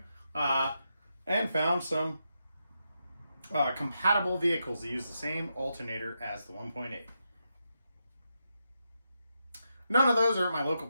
and found some compatible vehicles that use the same alternator as the 1.8. None of those are at my local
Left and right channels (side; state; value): both; inverted; correlation -0.85